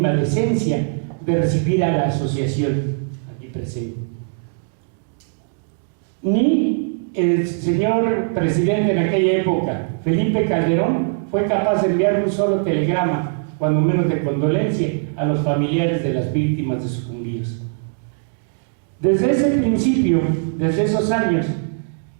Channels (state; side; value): silent; left; digital silence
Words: decencia de recibir a la asociación aquí presente. Ni el señor presidente en aquella época, Felipe Calderón, fue capaz de enviar un solo telegrama, cuando menos de condolencia, a los familiares de las víctimas de sucumbidos. Desde ese principio, desde esos años,